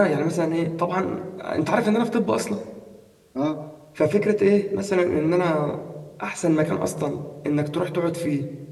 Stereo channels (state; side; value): identical; both; correlation 1.00